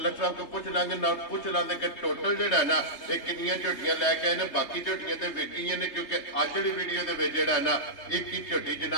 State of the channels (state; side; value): late; right; 3.3 ms